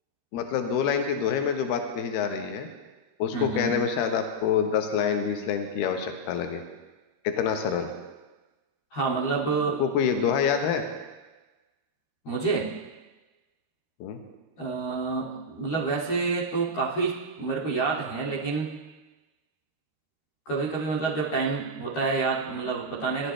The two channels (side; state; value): right; late; 13 ms